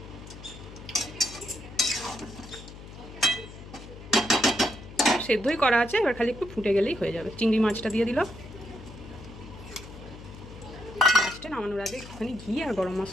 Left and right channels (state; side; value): noise; left; hum, 15 dB below the sound